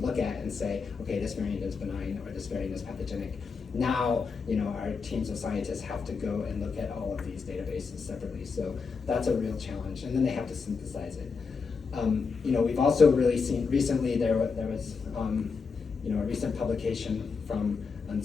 look at and say, okay, this variant is benign or this variant is pathogenic. Now, our teams of scientists have to go and look at all of these databases separately. So that's a real challenge, and then they have to synthesize it. We've also really seen recently there was a recent publication from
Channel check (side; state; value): right; quieter; 5.1 dB